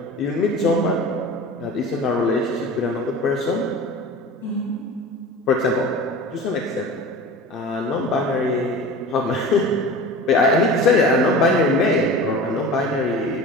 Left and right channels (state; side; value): normal; both; correlation 0.35